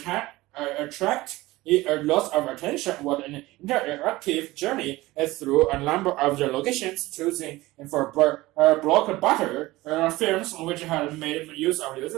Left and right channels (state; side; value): quieter; left; 19.0 dB